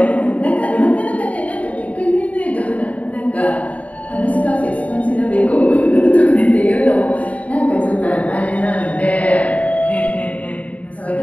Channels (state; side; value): late; right; 0.068 ms